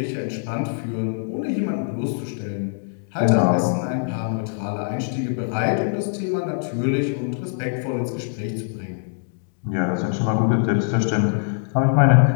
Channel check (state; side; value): silent; right; digital silence